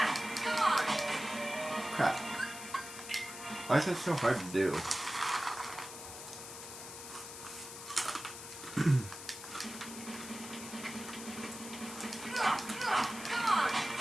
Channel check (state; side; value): noise; left; hiss, 11 dB below the sound